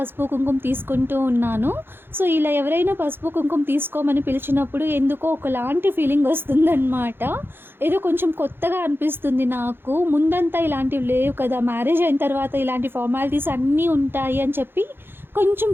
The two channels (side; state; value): left; late; 0.10 ms